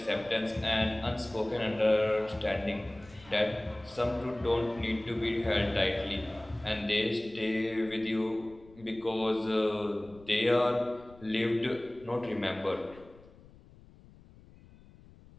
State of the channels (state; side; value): noise; left; rumble, 23 dB below the sound